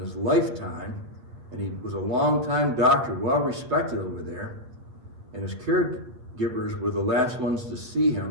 lifetime, and he was a long-time doctor, well respected over there, and his caregivers were the last ones to see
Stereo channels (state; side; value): late; left; 8.5 ms